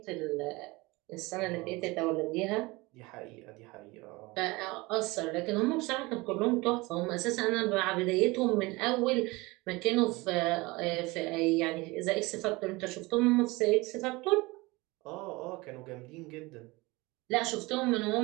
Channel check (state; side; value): quieter; left; 23.1 dB